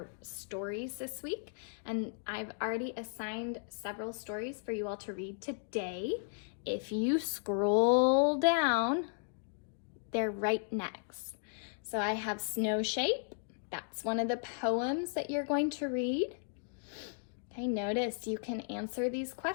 stories this week, and I've already assigned several stories for you all to read today. If you scroll down, they're right next. So I have Snow Shape. That's one of the poems that you're going to read. Okay, notice you can answer these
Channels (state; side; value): silent; right; digital silence